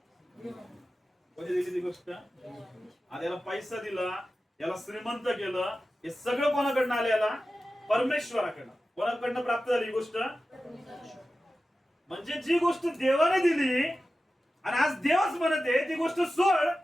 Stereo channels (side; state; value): both; normal; correlation 0.94